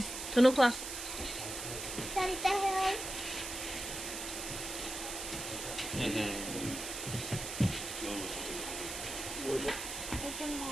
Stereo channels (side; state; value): right; noise; hiss, 6 dB below the sound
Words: ধুনু খোৱা Santa Hel.